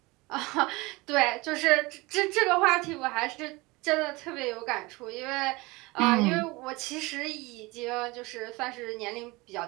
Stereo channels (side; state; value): left; quieter; 23.3 dB